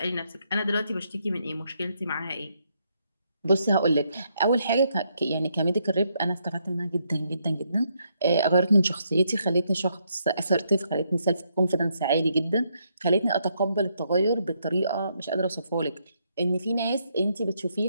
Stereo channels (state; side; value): inverted; both; correlation -0.76